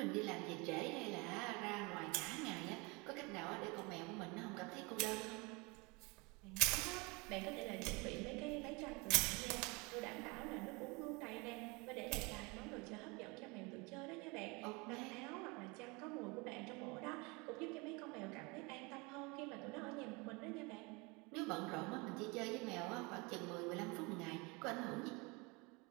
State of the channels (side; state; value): left; quieter; 27.4 dB